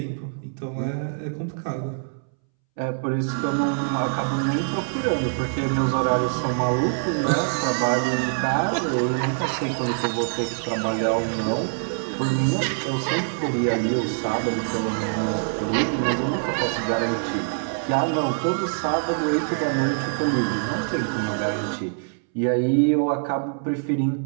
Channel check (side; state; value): left; silent; 62 dB below the other